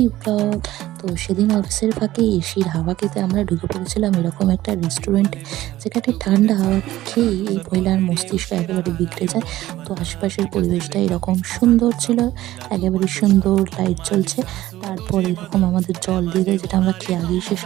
ব্লগ। তো সেদিন অফিসের ফাঁকে এসির হাওয়া খেতে আমরা ঢুকে পড়েছিলাম এরকম একটা রেস্টুরেন্টে, যেখানে ঠান্ডা হাওয়া খেয়ে এই মহিলার মস্তিষ্ক একেবারে বিগড়ে যায়। তো আশেপাশের পরিবেশটা এরকম সুন্দর ছিল, একেবারে সুন্দর লাইট জ্বলছে। তারপর এরকম আমাদের জল দিয়ে দেয়, যেটা আমরা খেয়ে আগেই শেষ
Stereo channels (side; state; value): left; quieter; 15.3 dB